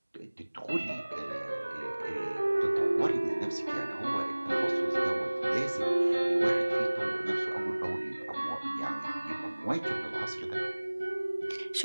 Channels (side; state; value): both; inverted; correlation -1.00